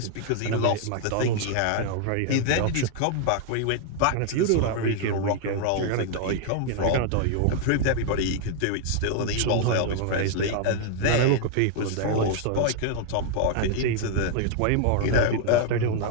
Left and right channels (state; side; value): different; both; correlation 0.00